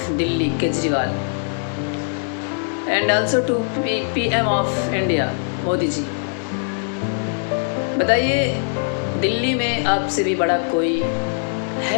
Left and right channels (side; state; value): right; silent; digital silence